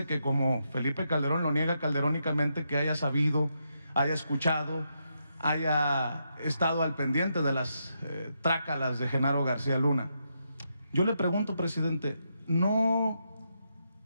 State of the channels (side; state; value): both; inverted; correlation -0.82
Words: que como Felipe Calderón lo niega calderónicamente, que haya sabido, haya escuchado, haya estado al pendiente de las trácalas de Genaro García Luna. Yo le pregunto, presidente, ¿no